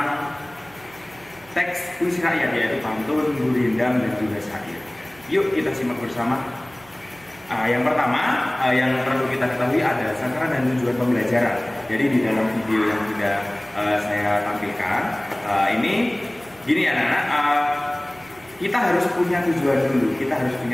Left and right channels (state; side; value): noise; right; hum, 26 dB below the sound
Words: teks puisi rakyat, yaitu pantun, gurindam, dan juga syair. Yuk kita simak bersama. Yang pertama yang perlu kita ketahui ada sasaran dan tujuan pembelajaran. Jadi di dalam video yang sudah saya tampilkan ini gini anak-anak, kita harus punya tujuan dulu, kita harus